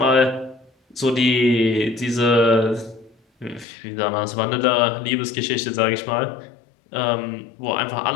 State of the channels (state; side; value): drops out; right; at 3.7 s